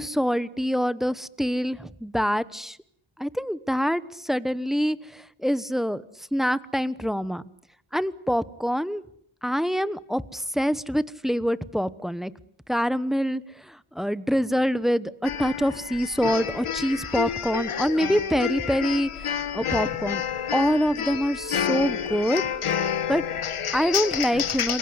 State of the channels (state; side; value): normal; both; correlation 0.80